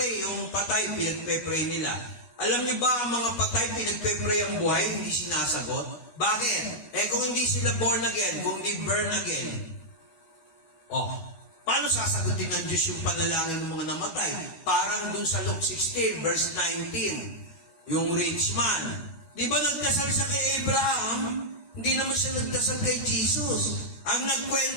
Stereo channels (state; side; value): late; right; 12 ms